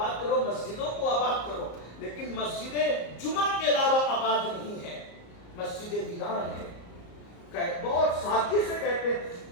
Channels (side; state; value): right; late; 34 ms